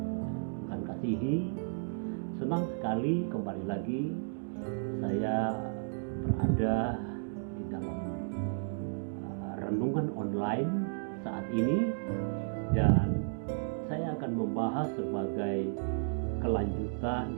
Tuhan kasihi. Senang sekali kembali lagi saya berada di dalam renungan online saat ini, dan saya akan membahas sebagai kelanjutan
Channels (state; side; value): silent; left; digital silence